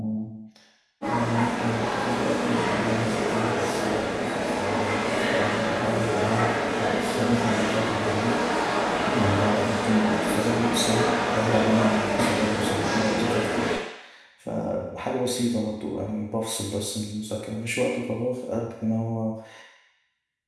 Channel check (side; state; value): both; identical; correlation 1.00